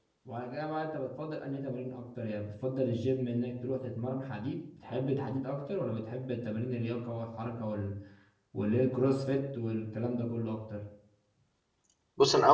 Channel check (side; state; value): both; identical; correlation 1.00